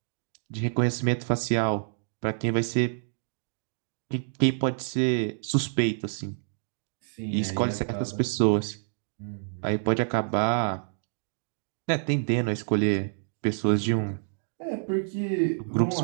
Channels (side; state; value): left; silent; digital silence